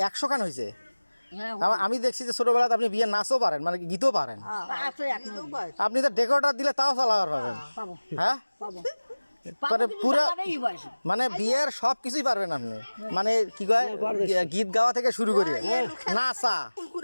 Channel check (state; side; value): inverted; both; correlation -1.00